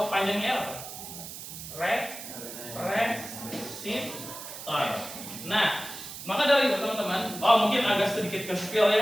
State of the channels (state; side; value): noise; right; hiss, 11 dB below the sound